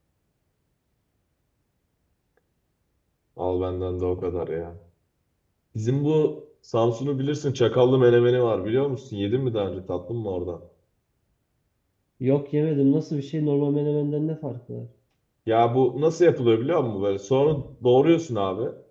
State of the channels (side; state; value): both; identical; correlation 1.00